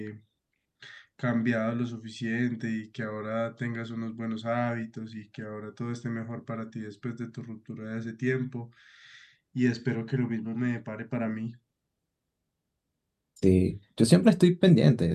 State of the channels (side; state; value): both; identical; correlation 1.00